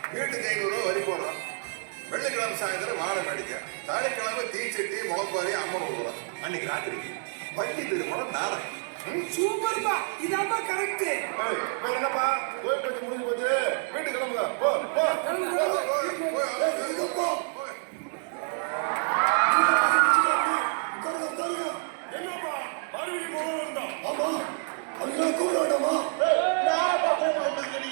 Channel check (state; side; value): silent; left; 59 dB below the other